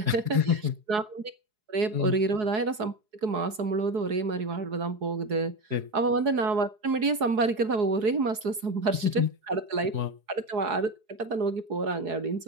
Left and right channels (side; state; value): left; late; 4.7 ms